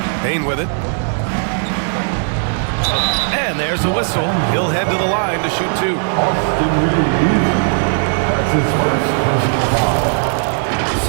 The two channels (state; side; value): silent; left; 57 dB below the other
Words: Bain with it. And there's a whistle. He'll head to the line to shoot 2. Austin Reeves. That's his first personal foul.